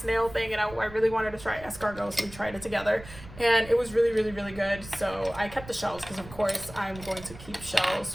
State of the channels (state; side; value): noise; right; rumble, 17 dB below the sound